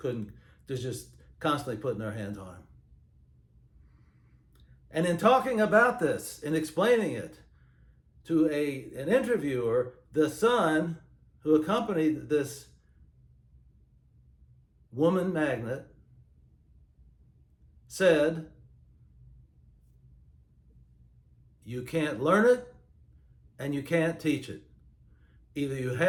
They're just constantly putting their hands on him. And in talking about this and explaining it to an interviewer, the son who accompanied this woman magnet said, "You can't learn it and you can't teach it. Either you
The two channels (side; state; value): both; identical; correlation 1.00